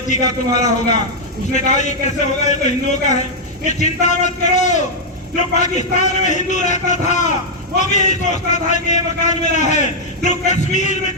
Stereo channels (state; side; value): normal; both; correlation -0.04